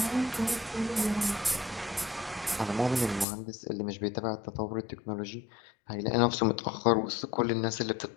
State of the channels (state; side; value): drops out; right; at 3.2 s